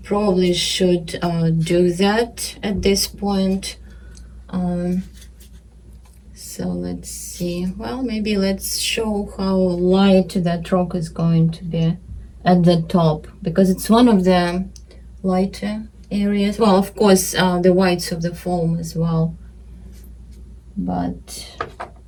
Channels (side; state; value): both; identical; correlation 1.00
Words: Probably should do that at this point. So let's see. Well, maybe let's show how light that rock is going to be at the top, because it's one of the lighter areas. Well, of course, the whites of the foam as well, but